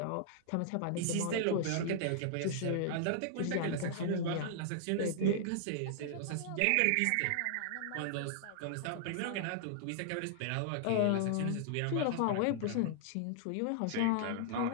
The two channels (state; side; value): different; both; correlation -0.01